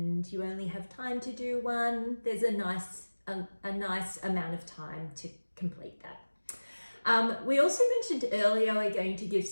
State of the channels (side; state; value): both; inverted; correlation -1.00